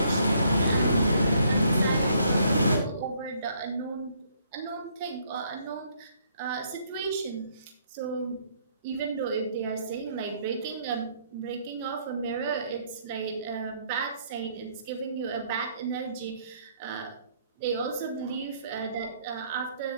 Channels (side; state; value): both; inverted; correlation -0.67